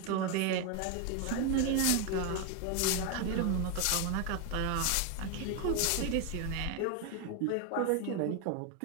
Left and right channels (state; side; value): different; both; correlation 0.01